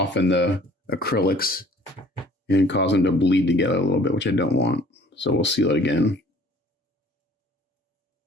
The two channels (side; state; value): both; normal; correlation 0.52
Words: the acrylics and cause them to bleed together a little bit, which I don't want. So we'll seal it again.